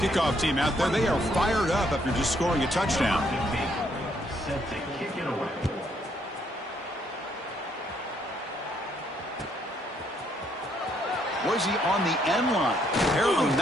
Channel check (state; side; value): normal; both; correlation 0.71